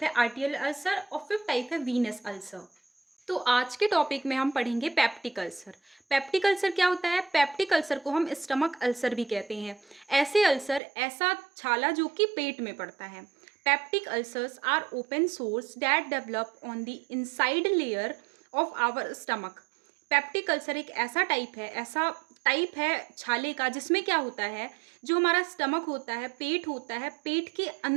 है आर्टियल अल्सर और फिफ्थ टाइप है वीनस अल्सर। तो आज के टॉपिक में हम पढ़ेंगे पेप्टिक अल्सर। पेप्टिक अल्सर क्या होता है? पेप्टिक अल्सर को हम स्टमक अल्सर भी कहते हैं। ऐसे अल्सर, ऐसा छाला जो कि पेट में पड़ता है। Peptic ulcers are open sores that develop on the inside layer of our stomach. Peptic ulcer एक ऐसा टाइप है छाले का जिसमें क्या होता है, जो हमारा स्टमक होता है, पेट होता है, पेट के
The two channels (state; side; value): drops out; left; at 10.8 s